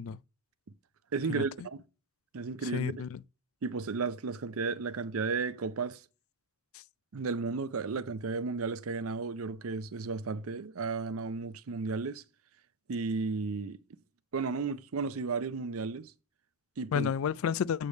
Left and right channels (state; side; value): normal; both; correlation 0.05